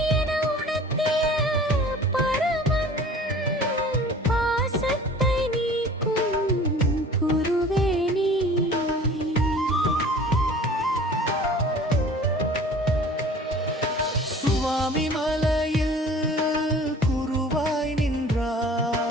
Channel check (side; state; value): both; normal; correlation 0.45